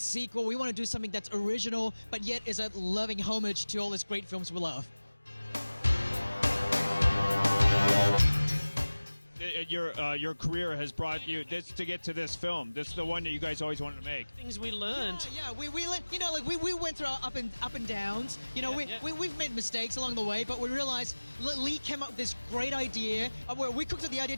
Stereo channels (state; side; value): inverted; both; correlation -1.00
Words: We want to do something that's original, but yet is a loving homage to all these great films we love. Your career has brought you this to get to this film. This is the one that you guys always wanted to make. Things we learned. Yeah, we you know, like we went through our up and downs. You know, Yeah, yeah. we've made mistakes along the way, but we realized Leigh came up with this great idea. Where we cooked up the idea